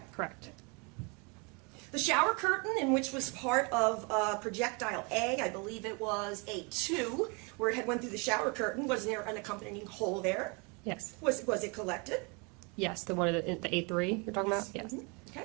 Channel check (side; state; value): left; quieter; 31.7 dB